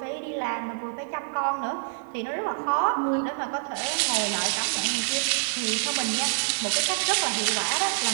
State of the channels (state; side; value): silent; left; 60 dB below the other